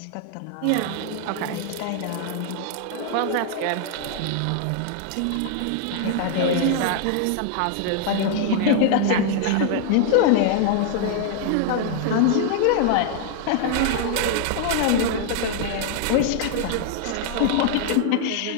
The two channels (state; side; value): different; both; correlation 0.00